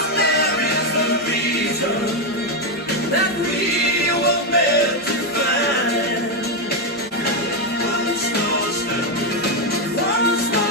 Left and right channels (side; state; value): both; normal; correlation 0.05